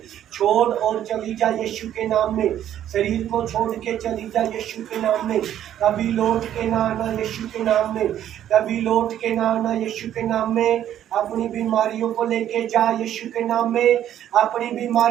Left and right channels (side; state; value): left; quieter; 11.1 dB